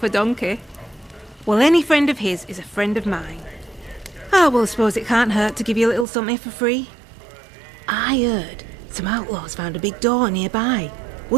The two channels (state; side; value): drops out; left; at 6.1 s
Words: a donkey. Well, any friend of his is a friend of mine. Oh, well, I suppose it can't hurt to give you a little something for free. I heard some outlaws found a big door nearby,